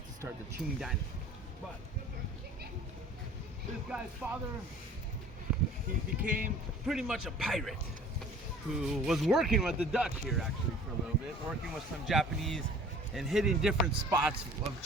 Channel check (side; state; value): both; normal; correlation 0.48